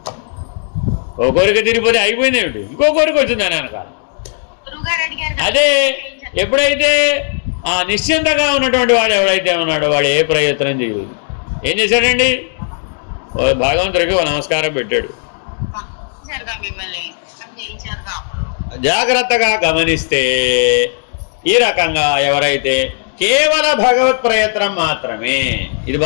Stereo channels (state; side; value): silent; right; 64 dB below the other